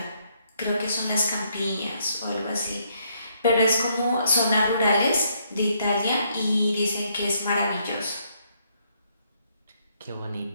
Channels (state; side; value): inverted; both; correlation -0.72